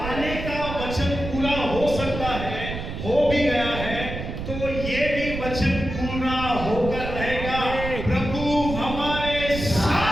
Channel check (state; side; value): noise; right; rumble, 7 dB below the sound